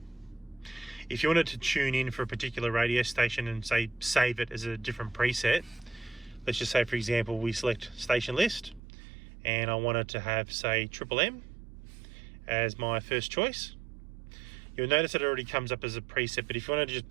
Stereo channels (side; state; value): left; drops out; at 8.8 s